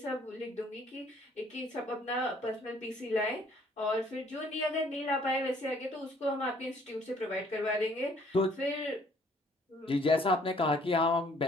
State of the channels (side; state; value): both; normal; correlation 0.61